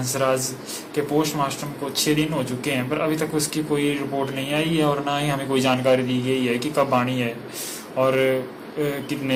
के पोस्टमार्टम को 6 दिन हो चुके हैं, पर अभी तक उसकी कोई रिपोर्ट नहीं आई है और ना ही हमें कोई जानकारी दी गई है कि कब आनी है और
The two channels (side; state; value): both; identical; correlation 1.00